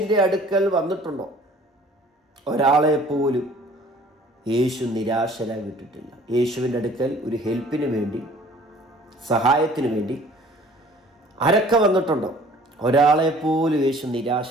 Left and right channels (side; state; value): both; normal; correlation 0.52